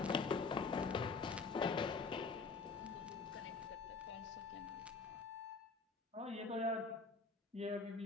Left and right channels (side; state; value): right; quieter; 4.4 dB